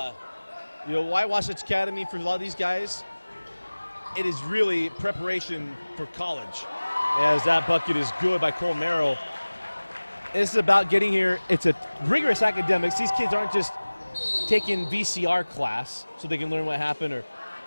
know, why Wasatch Academy for a lot of these guys? It is really preparation for college. As that bucket is good by Colmero. It's about getting here. It's a rigorous academics. These kids aren't just taking VCR class so they can learn what happened or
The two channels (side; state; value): both; inverted; correlation -1.00